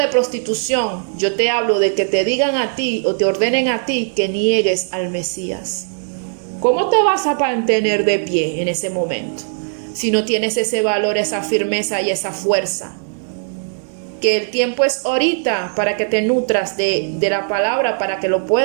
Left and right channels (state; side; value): silent; left; 67 dB below the other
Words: prostitución, yo te hablo de que te digan a ti o te ordenen a ti que niegues al Mesías. ¿Cómo te vas a mantener de pie en ese momento si no tienes ese valor, esa firmeza y esa fuerza? Que el tiempo es ahorita para que te nutras de la palabra, para que lo